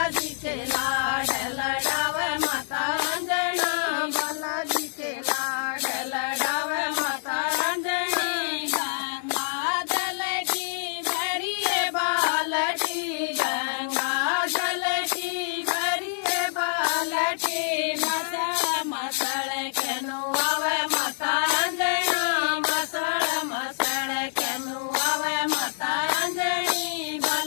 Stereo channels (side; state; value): right; silent; digital silence